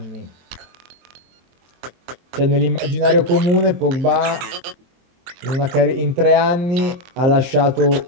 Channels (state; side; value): late; left; 23 ms